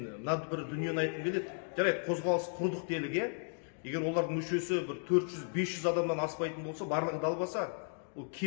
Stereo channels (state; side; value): silent; right; 55 dB below the other